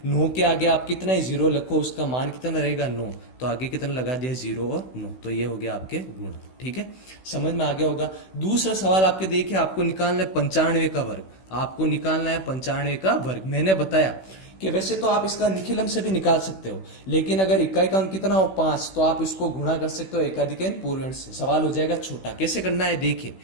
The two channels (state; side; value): late; right; 16 ms